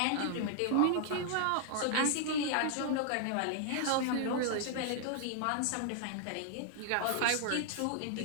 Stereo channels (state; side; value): different; both; correlation -0.01